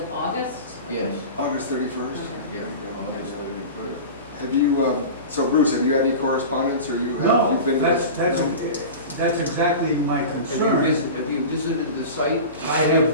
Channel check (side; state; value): both; inverted; correlation -0.32